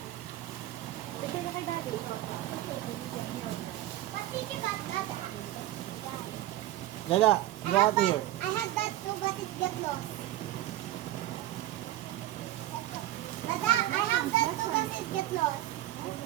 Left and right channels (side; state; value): left; quieter; 14.8 dB